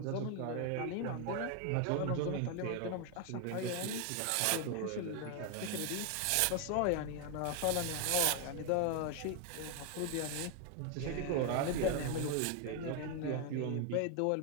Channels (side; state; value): both; different; correlation 0.01